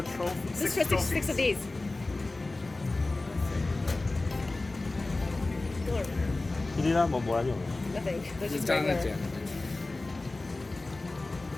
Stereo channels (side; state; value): right; quieter; 3.1 dB